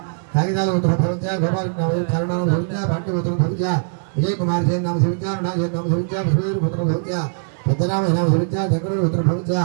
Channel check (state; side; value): silent; left; digital silence